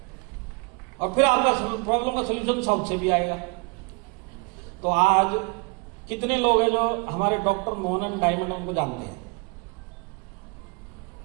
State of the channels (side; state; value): left; quieter; 29.9 dB